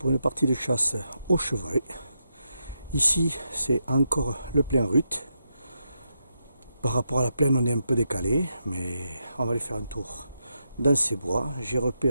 une partie de chasse au chevreuil. Ici, c'est encore le plein rut. Par rapport à la plaine, on est un peu décalé, mais on va aller faire un tour dans ces bois. J'ai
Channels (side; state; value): both; inverted; correlation -0.84